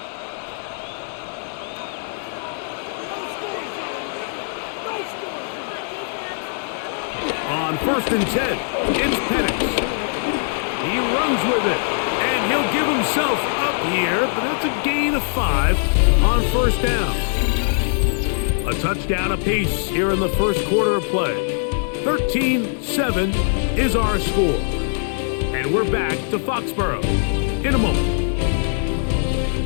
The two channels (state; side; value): silent; right; digital silence